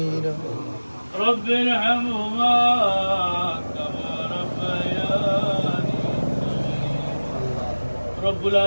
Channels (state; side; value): inverted; both; correlation -1.00